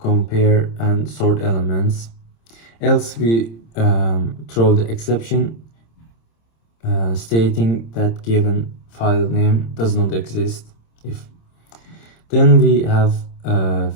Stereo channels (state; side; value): late; right; 26 ms